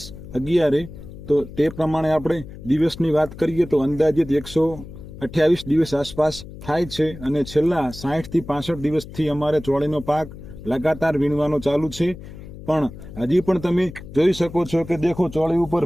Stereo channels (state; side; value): noise; left; hum, 14 dB below the sound